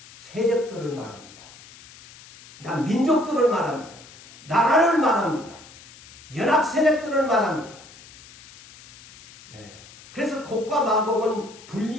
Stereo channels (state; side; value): noise; left; hiss, 21 dB below the sound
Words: 세력들을 말합니다. 민족들을 말합니다. 나라를 말합니다. 연합 세력들을 말합니다. 네. 그래서 곡과 마곡은